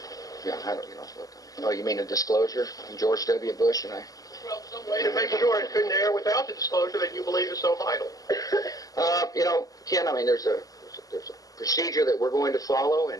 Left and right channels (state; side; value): late; right; 0.17 ms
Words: Yeah, I don't. Oh, you mean a disclosure from George W. Bush and I? Well, some way to make sure it couldn't air without the disclosure that you believe is so vital. Ken, I mean, there's a procedure that we're going to follow,